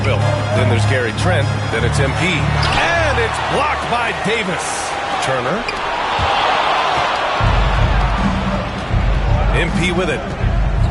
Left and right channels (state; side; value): identical; both; correlation 1.00